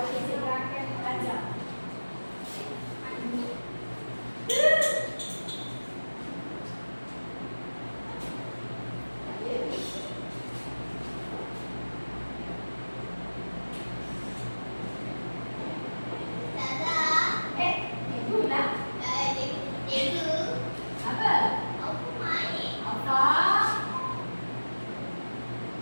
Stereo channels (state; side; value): inverted; both; correlation -1.00